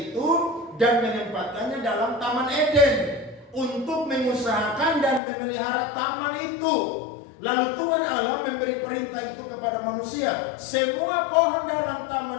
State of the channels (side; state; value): right; drops out; at 5.2 s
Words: dan menempatkannya dalam Taman Eden untuk mengusahakan dan memelihara taman itu. Lalu Tuhan Allah memberi perintah itu kepada manusia. Semua pohon dalam